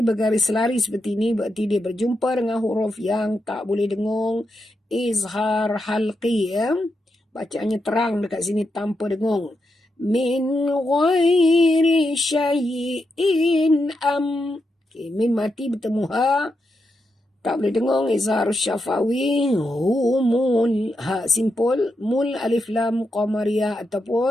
bergaris lari seperti ini, berarti dia berjumpa dengan huruf yang tak boleh dengung. Izhar halqi ya. Bacaannya terang dekat sini tanpa dengung. Min ghairi syai'in am. Okay, mim mati bertemu ha. Tak boleh dengung, izhar syafawi. Humul ha simpul. Mul alif lam qamariyah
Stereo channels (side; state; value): both; normal; correlation 0.85